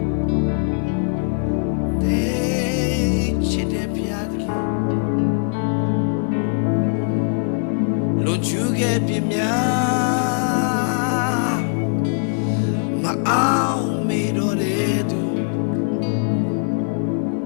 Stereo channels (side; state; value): right; silent; digital silence